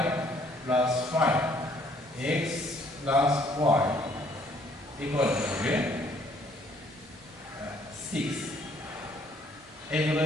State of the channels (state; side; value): normal; both; correlation 0.63